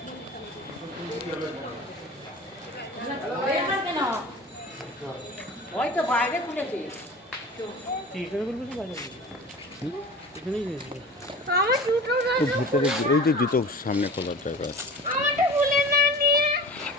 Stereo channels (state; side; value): normal; both; correlation 0.38